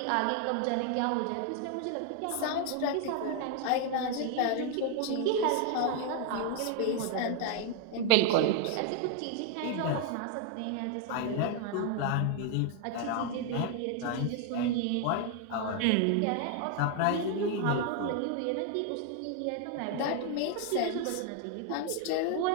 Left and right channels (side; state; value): both; different; correlation 0.00